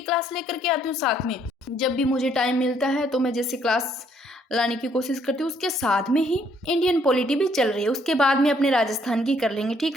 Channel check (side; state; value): both; normal; correlation 0.67